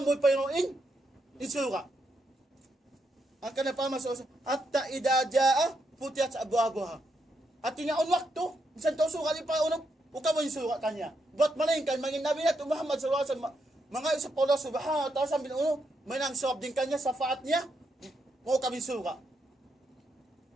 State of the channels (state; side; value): normal; both; correlation 0.80